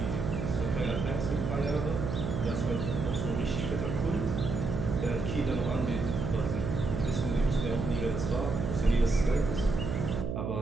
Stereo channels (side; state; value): right; noise; hum, 2 dB below the sound